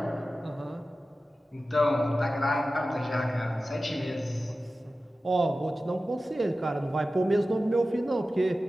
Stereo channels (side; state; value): both; normal; correlation 0.95